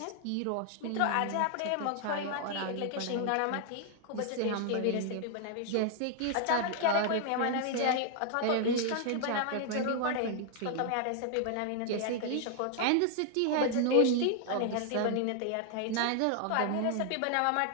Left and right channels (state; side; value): different; both; correlation 0.00